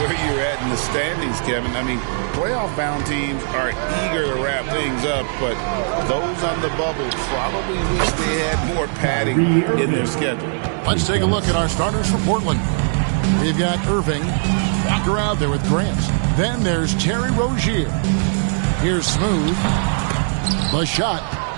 you're at in the standings, Kevin. I mean, playoff-bound teams are eager to wrap things up, but those on the bubble probably wish they had more padding in their schedule. Let's take a look at our starters for Portland. We've got Irving, Walker out there with Grant. Then there's Terry Rozier. Here's Smooth. The shot,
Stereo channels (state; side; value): silent; left; 66 dB below the other